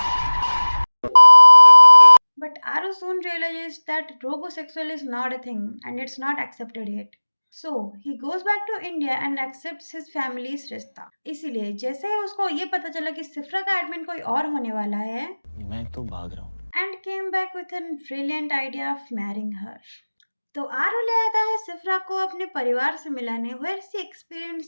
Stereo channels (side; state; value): both; inverted; correlation -1.00